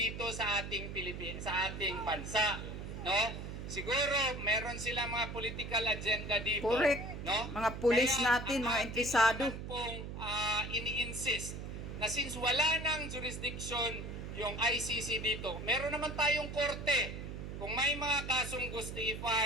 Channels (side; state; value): right; noise; hum, 7 dB below the sound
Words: sa ating sa ating bansa, no? Siguro meron sila mga political agenda dito. Correct. No? Mga pulis Kaya, natin, mga interesado. Pong ini-insist na since wala nang jurisdiction yung ICC dito, meron naman tayong korte. Kung may mga kasong gusto